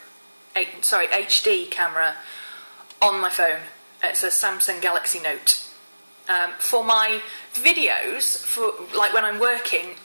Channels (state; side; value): inverted; both; correlation -1.00